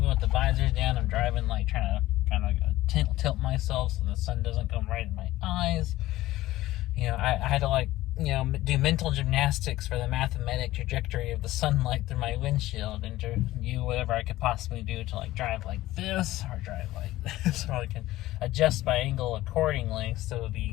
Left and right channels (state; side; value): quieter; right; 16.4 dB